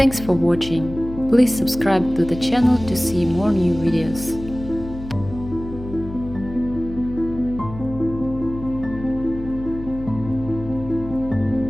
for watching. Please subscribe to the channel to see more new videos.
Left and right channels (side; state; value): left; noise; hum, 12 dB below the sound